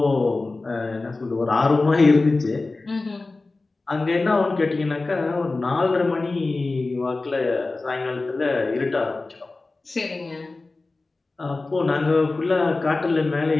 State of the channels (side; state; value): right; quieter; 3.4 dB